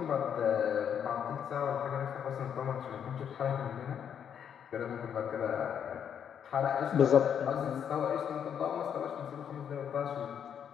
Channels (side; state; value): right; quieter; 8.4 dB